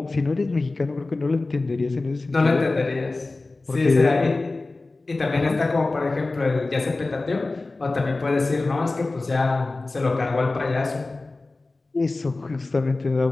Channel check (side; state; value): right; quieter; 3.3 dB